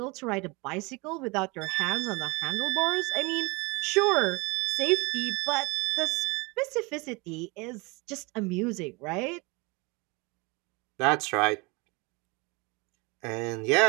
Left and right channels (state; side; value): quieter; left; 26.5 dB